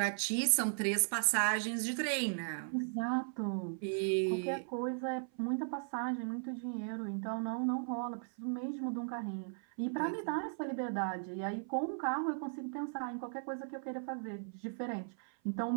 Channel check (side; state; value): left; silent; 53 dB below the other